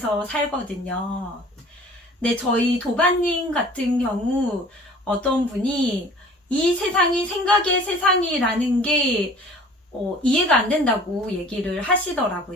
살거든요. 네, 저희 도반님 같은 경우 어떤 분이 이 세상이 생각의 세상이라는 게 이해가 안 된다고 얘기를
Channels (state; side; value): normal; both; correlation 0.48